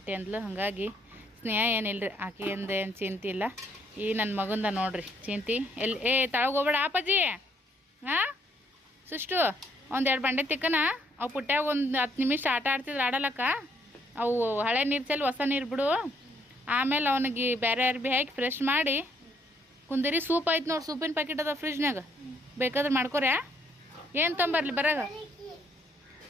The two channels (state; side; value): normal; both; correlation 0.69